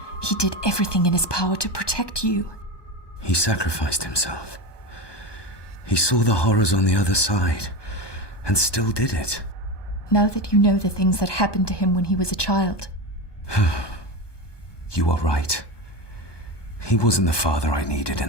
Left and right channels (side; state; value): right; late; 1.2 ms